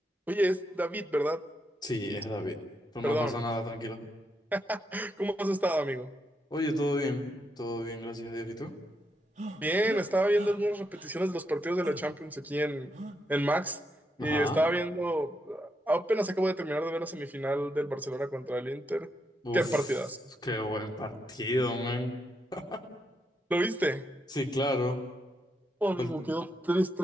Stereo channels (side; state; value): both; normal; correlation 0.81